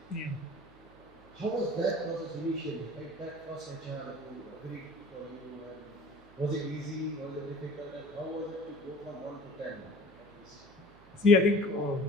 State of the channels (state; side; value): noise; right; hum, 25 dB below the sound